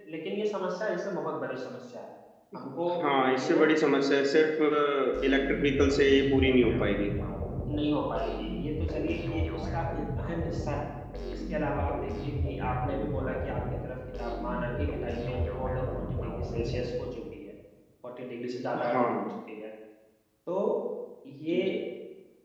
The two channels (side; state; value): both; identical; correlation 1.00